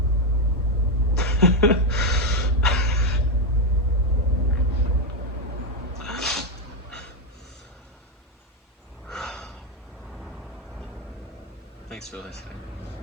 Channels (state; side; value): normal; both; correlation 0.05